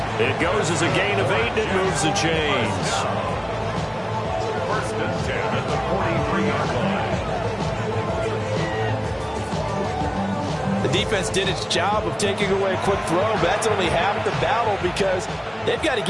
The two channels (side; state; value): both; identical; correlation 1.00